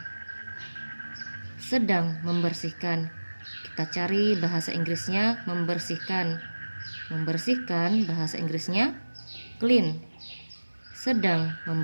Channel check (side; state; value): both; inverted; correlation -1.00